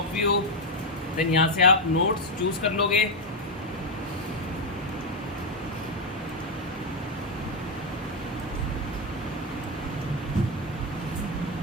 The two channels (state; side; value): normal; both; correlation 0.04